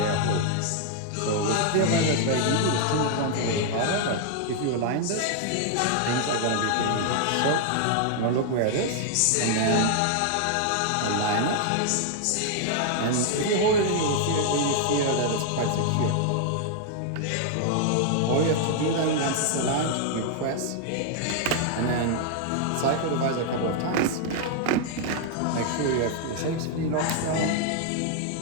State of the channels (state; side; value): different; both; correlation 0.00